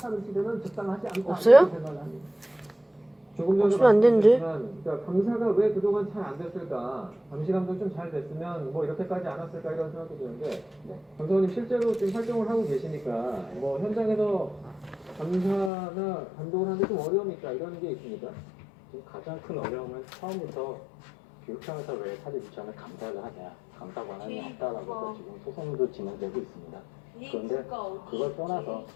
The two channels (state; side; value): drops out; right; at 15.7 s